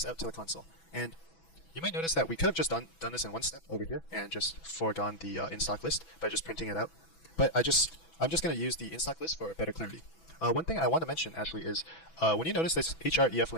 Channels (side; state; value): right; late; 6.1 ms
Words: out to the console. And you might notice that we could have just done this in one step over here and just foregone the in-stock list by just printing it out. But I'm just going to use the in-stock list for better clarity. One thing I want to mention actually is when you notice this href